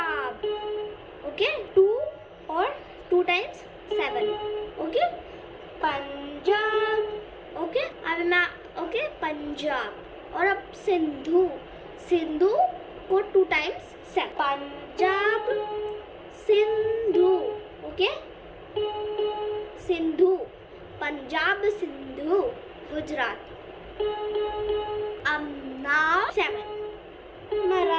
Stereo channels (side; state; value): both; identical; correlation 1.00